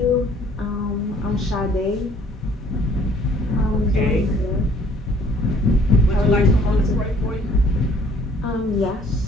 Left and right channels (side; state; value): both; normal; correlation 0.58